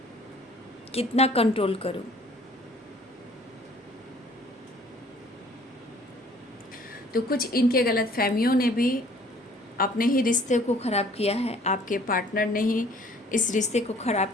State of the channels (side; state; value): both; normal; correlation 0.55